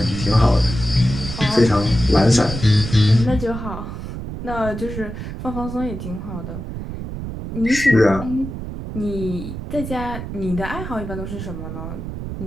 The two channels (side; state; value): right; noise; rumble, 7 dB below the sound